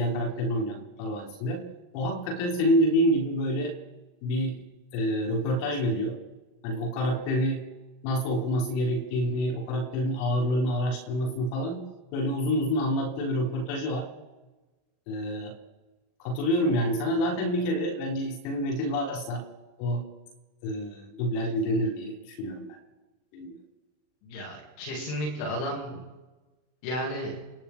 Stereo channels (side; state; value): right; late; 40 ms